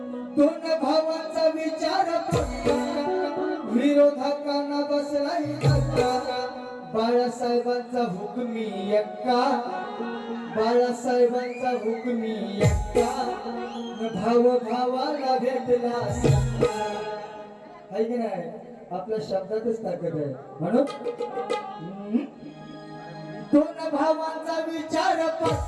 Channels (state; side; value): identical; both; correlation 1.00